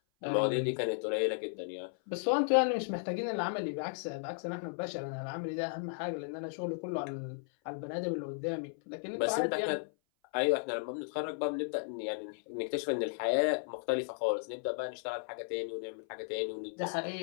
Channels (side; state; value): right; silent; 54 dB below the other